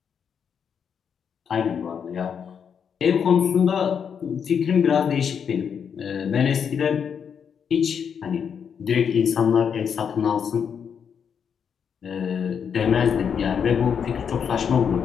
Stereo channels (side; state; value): right; quieter; 7.2 dB